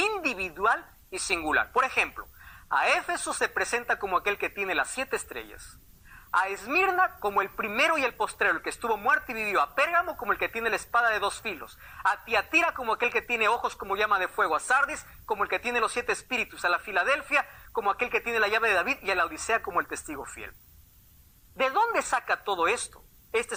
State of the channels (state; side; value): identical; both; correlation 1.00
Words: y singular. Por ejemplo, a Éfeso se presenta como aquel que tiene las 7 estrellas. A Esmirna como el primero y el postrero, el que estuvo muerto y vivió. A Pérgamo como el que tiene la espada de 2 filos. A Tiatira como aquel que tiene ojos como llama de fuego. A Sardis como el que tiene los 7 espíritus. A la Filadelfia como aquel que tiene la llave de David. Y a la Odisea como el testigo fiel. ¿De dónde saca todo esto?